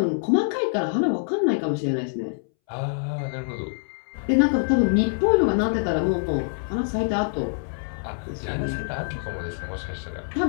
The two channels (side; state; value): right; silent; 62 dB below the other